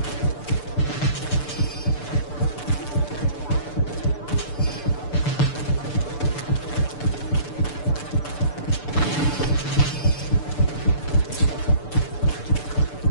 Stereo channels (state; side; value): late; right; 6.8 ms